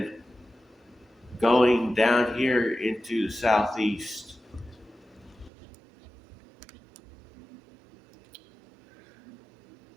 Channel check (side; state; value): left; drops out; at 5.5 s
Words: going down here into the Southeast.